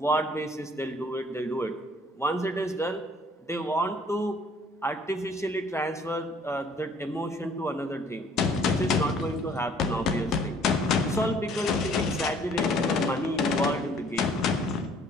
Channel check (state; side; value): normal; both; correlation 0.58